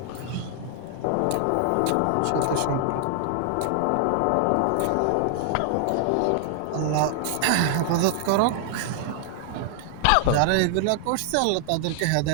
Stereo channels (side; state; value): both; different; correlation 0.00